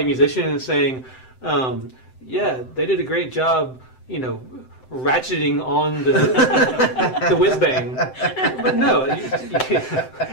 musician and saying, yeah, they did a great job, ratcheting on the the whiz bang, but no.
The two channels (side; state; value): right; late; 7.8 ms